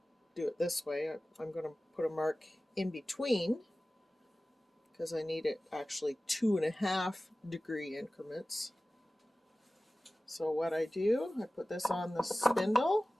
do it this way. I'm going to put a mark in between because I need it actually 2.5-degree increments. So what I do, I put this on the spindle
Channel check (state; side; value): normal; both; correlation 0.97